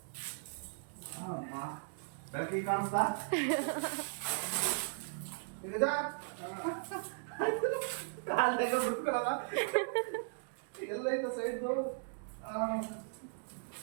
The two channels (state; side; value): silent; left; digital silence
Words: ಬೆಳಕಿಗೆ ಕಾಣಿಸ್ತಾ ಕಾಲ್ದಾಗ ಬಿಡ್ಕೊಳಲ್ಲ ಎಲ್ಲ ಐತ ಸೈಡ್ದು.